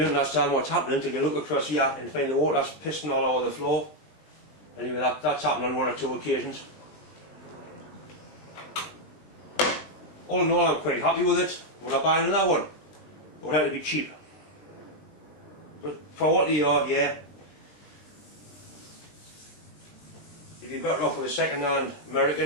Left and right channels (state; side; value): late; right; 20 ms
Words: understand what's happening until you look across here and find the water's pissing all over the floor. Anyway, that's happened on one or two occasions. All in all, I'm quite happy with it. Would I buy another one? It would have to be cheap. But for what they are, yeah. You'd be better off with a second-hand